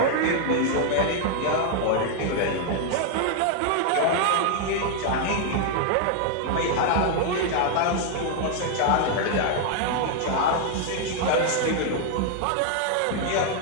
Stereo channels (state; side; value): different; both; correlation 0.00